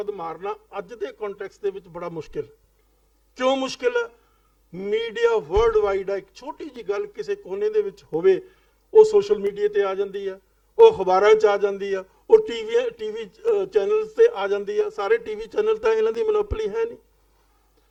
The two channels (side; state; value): both; identical; correlation 1.00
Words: ਮਾਰਨਾ ਅੱਜ ਦੇ ਕੰਟੈਕਸਟ ਦੇ ਵਿੱਚ ਬੜਾ ਮੁਸ਼ਕਿਲ ਹੈ। ਕਿਉਂ ਮੁਸ਼ਕਿਲ ਹੈ? ਮੀਡੀਆ ਵਰਲਡ ਵਾਈਡ ਹੈ। ਇੱਕ ਛੋਟੀ ਜੀ ਗੱਲ ਕਿਸੇ ਕੋਨੇ ਦੇ ਵਿੱਚ ਹੋਵੇ, ਉਹ ਸੋਸ਼ਲ ਮੀਡੀਆ ਤੇ ਆ ਜਾਂਦੀ ਹੈ, ਉਹ ਅਖਬਾਰਾਂ 'ਚ ਆ ਜਾਂਦੀ ਆ, ਉਹ ਟੀਵੀ ਚੈਨਲਸ ਤੇ ਆ ਜਾਂਦੀ ਆ। ਸਾਰੇ ਟੀਵੀ ਚੈਨਲ ਤਾਂ ਇਹਨਾਂ ਦੀ ਮੋਨੋਪੋਲੀ ਹੈ ਨਹੀਂ।